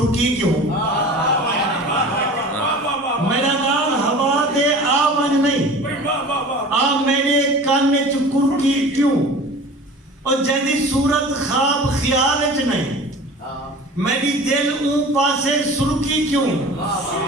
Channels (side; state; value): both; normal; correlation 0.40